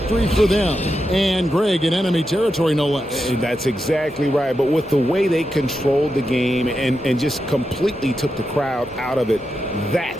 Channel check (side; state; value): both; normal; correlation 0.87